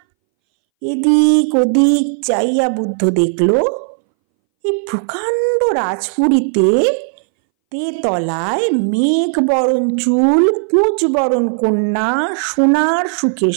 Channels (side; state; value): left; silent; 65 dB below the other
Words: এদিক ওদিক চাইয়া বুদ্ধ দেখল এই প্রকাণ্ড রাজপুরীতে তেতলায় মেঘ বরণ চুল কুঁচ বরণ কন্যা সোনার সুখের